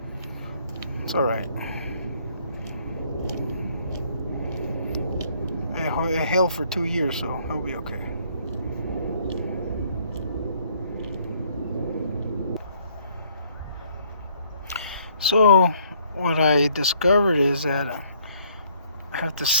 It's alright. It held for 2 years, so it'll be okay. So what I discovered is that I have to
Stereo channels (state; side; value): inverted; both; correlation -0.64